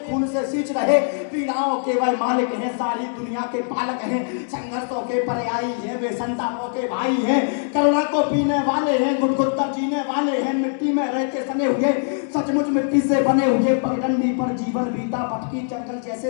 खून से सींच रहे, पीड़ाओं के वह मालिक हैं, सारी दुनिया के पालक हैं, संघर्षों के पर्यायी हैं, वे संतापों के भाई हैं, करुणा को पीने वाले हैं, गुदगुद कर जीने वाले हैं, मिट्टी में रहते सने हुए, सचमुच मिट्टी से बने हुए, पगडंडी पर जीवन बीता, भटकी जंगल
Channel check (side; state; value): right; silent; digital silence